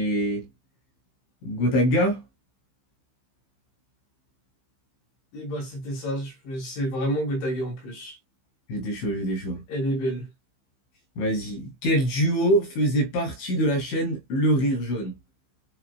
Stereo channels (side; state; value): right; late; 15 ms